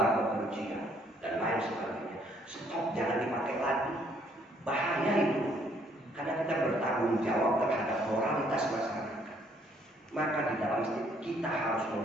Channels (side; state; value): both; normal; correlation 0.66